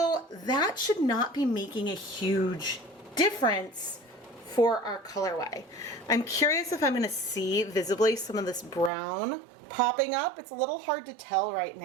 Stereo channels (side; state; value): left; drops out; at 8.9 s